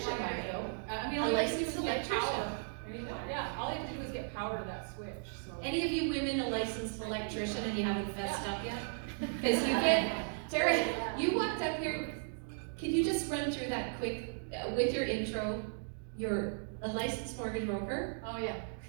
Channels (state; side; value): silent; left; digital silence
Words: might though. I mean, all you have to do is get Licensed power. Anyone? Yeah, all you have to do is get power to that switch, so. Any of you women a licensed electrician and you haven't fessed up yet? Because you get, Tara, you walked up here, can you just run through that quick, with your intro? You're a licensed mortgage broker. Oh, yeah.